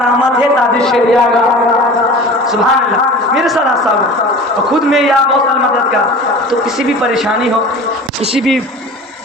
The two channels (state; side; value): normal; both; correlation 0.39